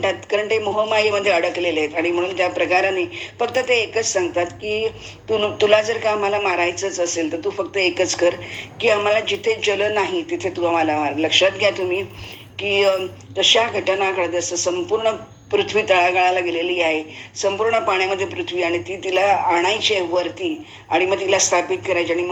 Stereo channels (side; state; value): both; identical; correlation 1.00